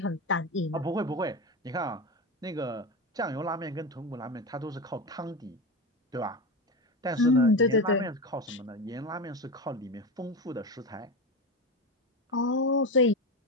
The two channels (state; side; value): normal; both; correlation 0.20